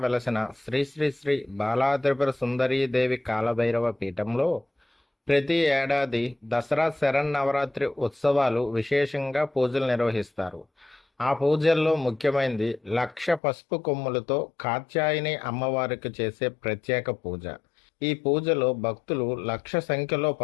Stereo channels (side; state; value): right; drops out; at 13.4 s